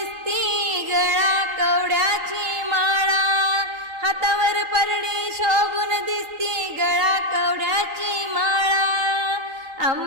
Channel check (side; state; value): left; late; 3.9 ms